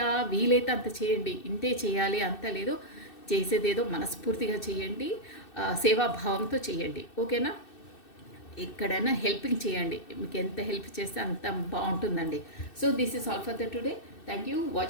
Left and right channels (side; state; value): right; late; 2.6 ms